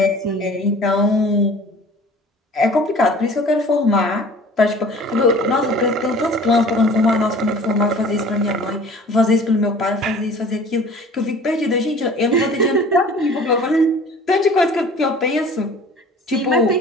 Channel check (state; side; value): normal; both; correlation 0.46